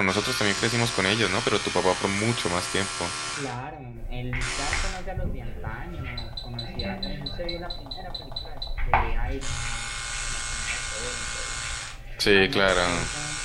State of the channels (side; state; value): both; identical; correlation 1.00